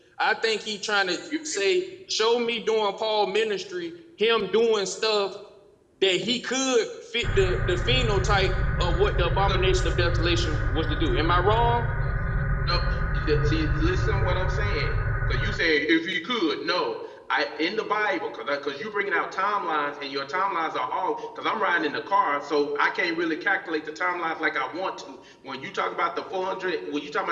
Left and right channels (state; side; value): identical; both; correlation 1.00